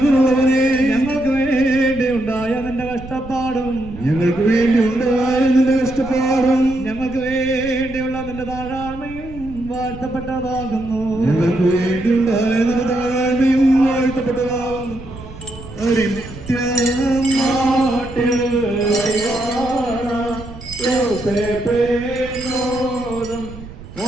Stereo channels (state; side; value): noise; right; rumble, 15 dB below the sound